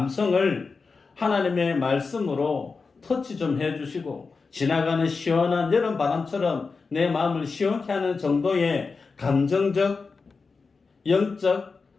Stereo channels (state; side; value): quieter; right; 4.5 dB